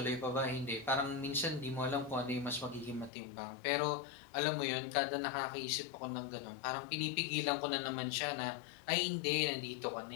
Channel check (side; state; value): right; drops out; at 3.1 s